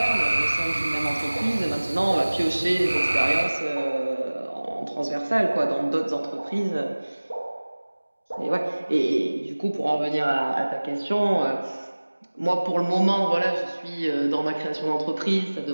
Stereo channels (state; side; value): inverted; both; correlation -1.00